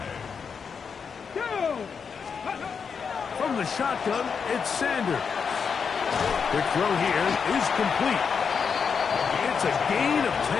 From the shotgun, it's Sanders. Quick throw here is complete. It's a gain of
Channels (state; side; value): quieter; right; 6.1 dB